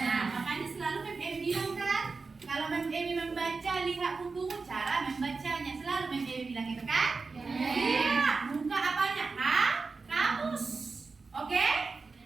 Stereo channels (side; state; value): left; quieter; 4.3 dB